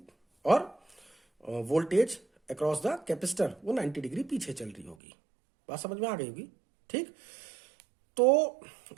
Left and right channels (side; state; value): left; drops out; at 5.0 s